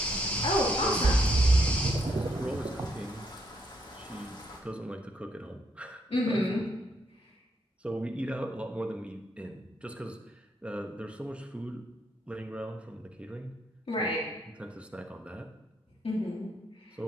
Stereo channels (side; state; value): both; normal; correlation 0.74